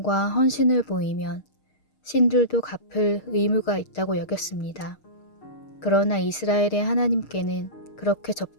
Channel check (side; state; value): right; late; 6.5 ms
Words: 헌신을 보이면 신들도 갚을 의무가 있다고 여겼습니다. 그러나 이스라엘의 하나님께는 그렇게